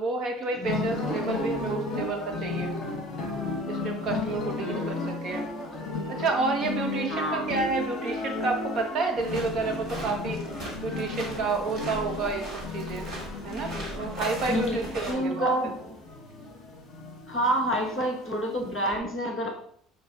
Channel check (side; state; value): both; normal; correlation 0.43